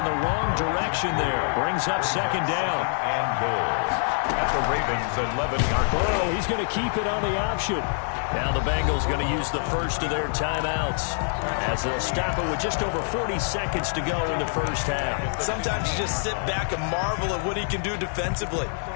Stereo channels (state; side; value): silent; right; digital silence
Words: the wrong direction there. Brings up 2nd down. And goal. At the Ravens' 11-yard line. Burrow, he's going to keep it on the option. Now the Bengals going to use the first of their timeouts as they'll stop it with just over 40 seconds to go in the first half. Sometimes you just sit back and marvel at what he can do defensively.